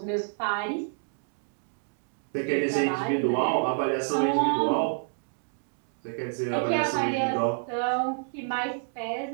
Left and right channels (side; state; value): left; silent; digital silence